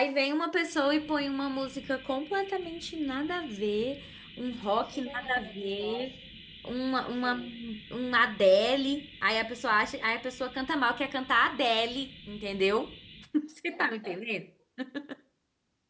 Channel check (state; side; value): identical; both; correlation 1.00